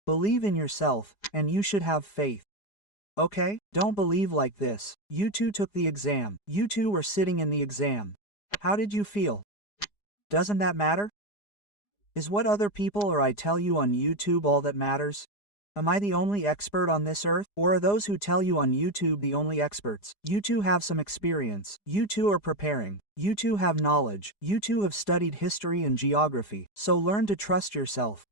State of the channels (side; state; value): right; late; 4.9 ms